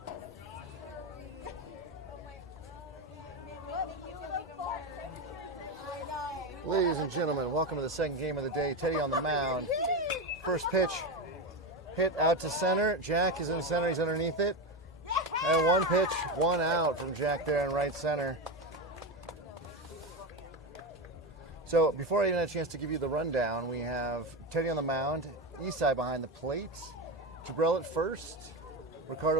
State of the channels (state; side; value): normal; both; correlation 0.16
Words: Ladies and gentlemen, welcome to the second game of the day. Teddy on the mound. First pitch hit out to center. Jack is in center. He's underneath it. And one pitch, one out from Jack there in right center. So before I even had a chance to give you the rundown, we have Teddy on the mound, Isai behind the plate, Jabril at first,